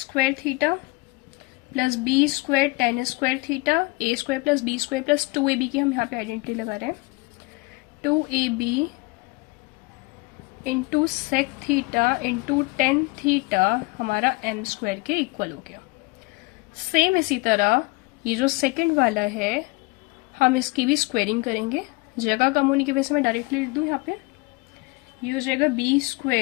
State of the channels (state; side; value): quieter; right; 25.2 dB